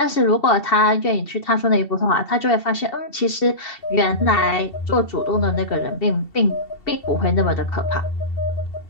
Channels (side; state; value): right; late; 2.7 ms